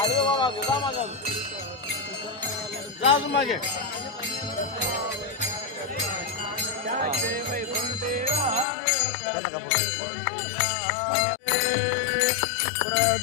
वा मागे जा मागे जा अजून मागे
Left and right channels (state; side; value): drops out; right; at 8.7 s